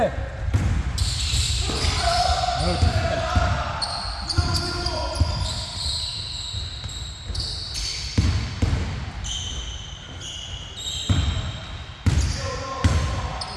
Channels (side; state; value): both; identical; correlation 1.00